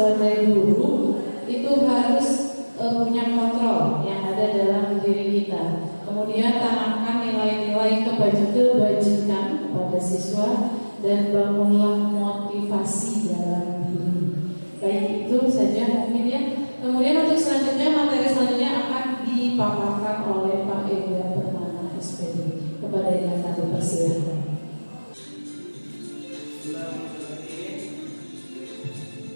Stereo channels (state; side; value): inverted; both; correlation -1.00